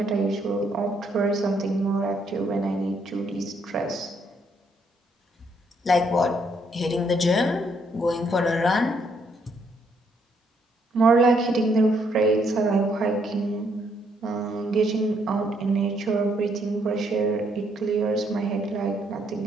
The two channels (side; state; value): both; normal; correlation 0.72